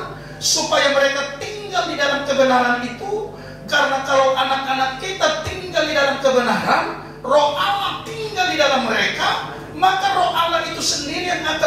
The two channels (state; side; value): identical; both; correlation 1.00